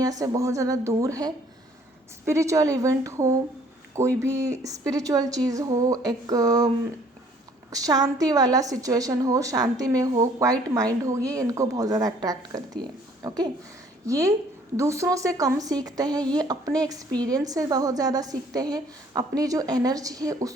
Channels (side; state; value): both; normal; correlation 0.59